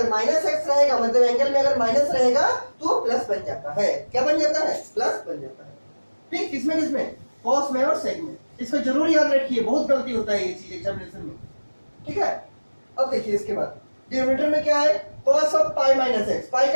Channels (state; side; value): inverted; both; correlation -1.00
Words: माइनस x रहेगा, मतलब एंगल में अगर माइनस रहेगा तो प्लस बन जाता है, क्या बन जाता है प्लस बन जाता है, ठीक, किसमें किसमें cos में और sec में। इसको जरूर याद रखिए, बहुत गलती होता है ये चीज एग्जामिनेशन में, ठीक है। अब देखिए इसके बाद डिनोमिनेटर में क्या है cos of pi minus x, पाई